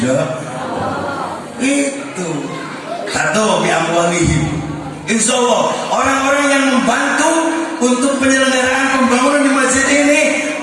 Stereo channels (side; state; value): both; identical; correlation 1.00